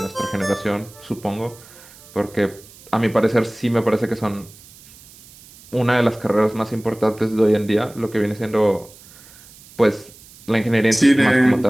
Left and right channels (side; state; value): right; noise; hiss, 23 dB below the sound